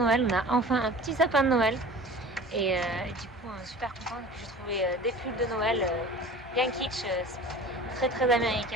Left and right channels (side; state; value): both; normal; correlation 0.40